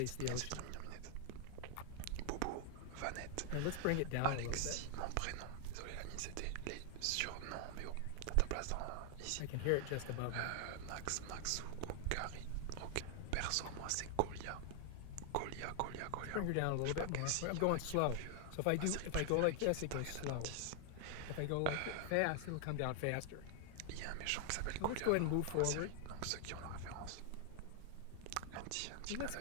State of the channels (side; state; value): both; different; correlation 0.00